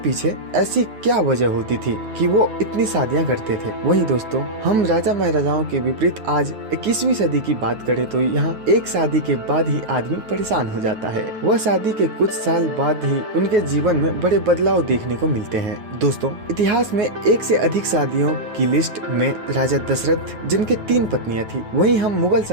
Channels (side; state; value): left; late; 9.2 ms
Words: ऐसी क्या वजह होती थी कि वो इतनी शादियां करते थे। वही दोस्तों, हम राजा महाराजाओं के विपरीत आज 21वीं सदी की बात करें तो यहाँ एक शादी के बाद ही आदमी परेशान हो जाता है। वह शादी के कुछ साल बाद ही उनके जीवन में बड़े बदलाव देखने को मिलते हैं। दोस्तों, इतिहास में एक से अधिक शादियों की लिस्ट में राजा दशरथ जिनके 3 पत्नियां थी। वहीं हम मुगल